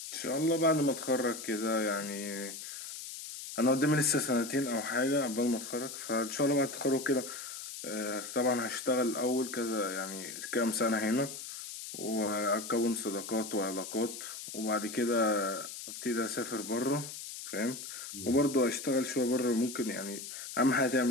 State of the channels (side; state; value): left; noise; hiss, 9 dB below the sound